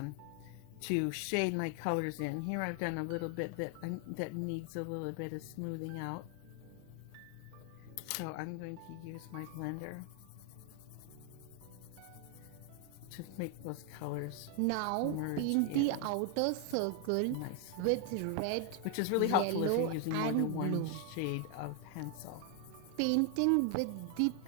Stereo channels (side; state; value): both; different; correlation 0.00